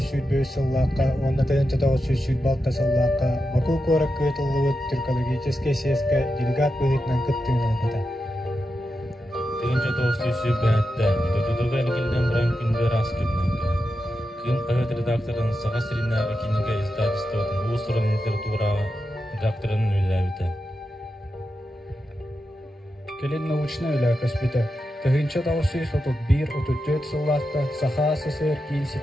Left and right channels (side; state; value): both; normal; correlation 0.89